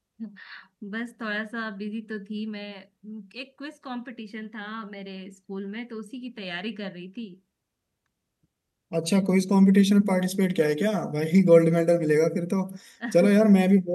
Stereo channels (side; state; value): both; identical; correlation 1.00